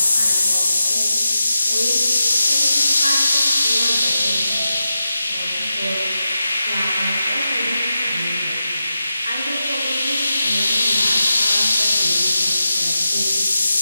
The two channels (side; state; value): both; inverted; correlation -0.89